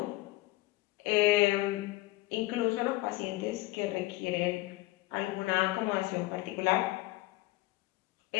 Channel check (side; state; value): right; quieter; 19.4 dB